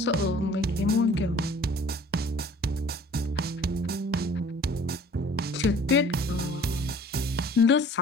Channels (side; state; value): both; normal; correlation 0.50